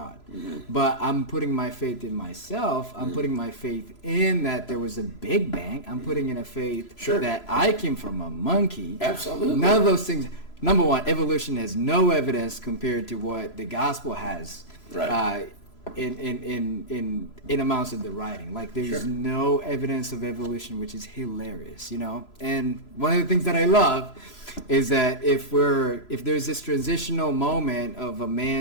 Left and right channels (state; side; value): late; right; 3.0 ms